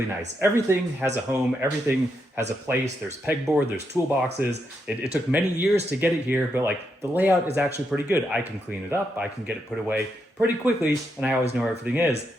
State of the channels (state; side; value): normal; both; correlation 0.81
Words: nice. Everything has a home, everything has a place. There's pegboard, there's toolboxes. It took many years to get it here, but like the layout is actually pretty good. I can clean it up, I can get it put away pretty quickly, and I always know where everything is,